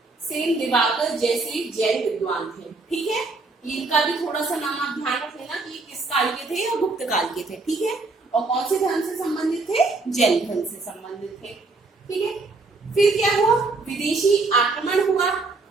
सेन, दिवाकर जैसे जैन विद्वान थे। ठीक है, इनका भी थोड़ा सा नाम आप ध्यान रख लेना कि किस काल के थे या गुप्त काल के थे। ठीक है, और कौन से धर्म से संबंधित थे, जैन धर्म से संबंधित थे। ठीक है, फिर क्या हुआ, विदेशी आक्रमण हुआ।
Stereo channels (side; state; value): left; quieter; 3.6 dB